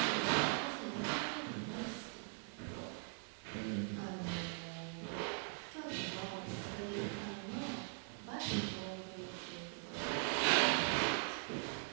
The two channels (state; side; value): silent; left; 50 dB below the other